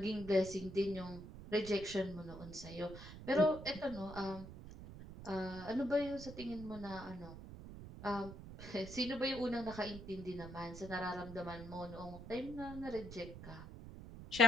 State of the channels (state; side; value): noise; right; rumble, 12 dB below the sound